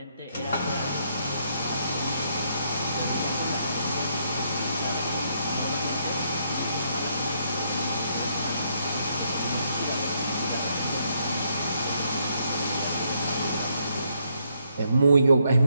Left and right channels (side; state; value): both; inverted; correlation -0.73